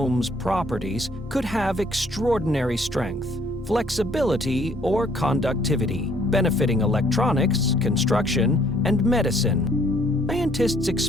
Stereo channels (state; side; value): normal; both; correlation 0.62